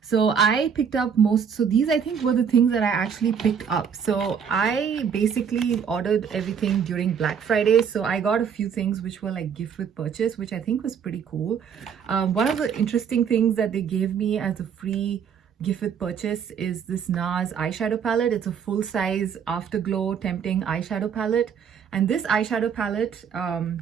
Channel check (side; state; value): left; quieter; 7.2 dB